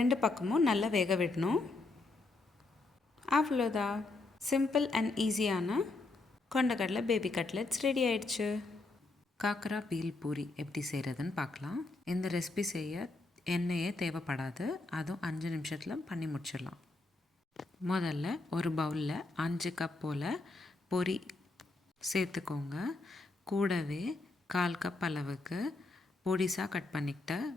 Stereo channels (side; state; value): right; quieter; 3.3 dB